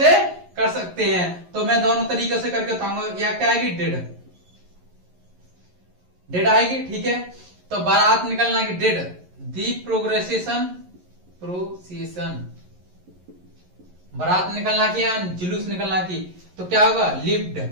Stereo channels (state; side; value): late; left; 11 ms